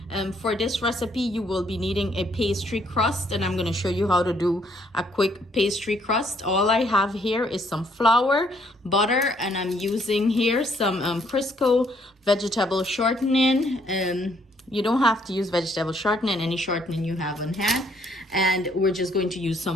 for this recipe, you will be needing a pastry crust, and I'm going to show you how to do a quick pastry crust. All I have here is some flour, butter, and I'm using here some Crisco vegetable shortening. You don't have to use vegetable shortening, any shortening you have on hand. And we're just going to use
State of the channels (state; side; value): normal; both; correlation 0.68